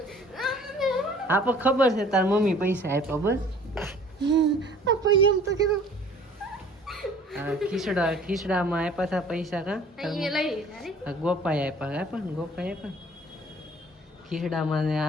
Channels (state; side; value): normal; both; correlation 0.51